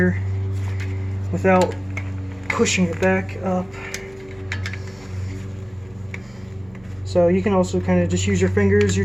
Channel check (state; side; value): noise; right; hum, 26 dB below the sound